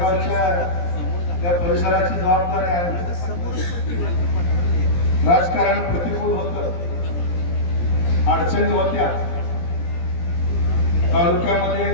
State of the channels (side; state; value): right; late; 17 ms